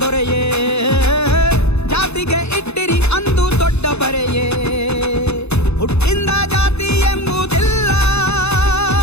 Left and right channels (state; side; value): late; right; 0.80 ms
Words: ದೊರೆಯೇ ಜಾತಿಗೆ ಇಟ್ಟಿರಿ ಅಂದು ದೊಡ್ಡ ಬರೆಯೇ ಹುಟ್ಟಿಂದ ಜಾತಿ ಎಂಬುದಿಲ್ಲ